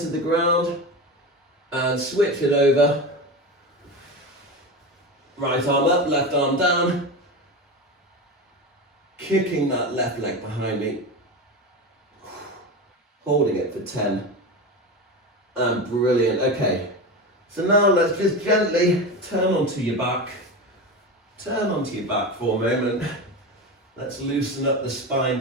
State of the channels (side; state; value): both; normal; correlation 0.23